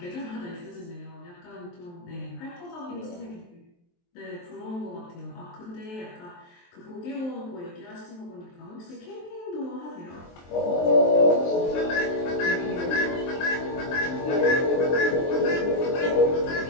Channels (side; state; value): right; late; 23 ms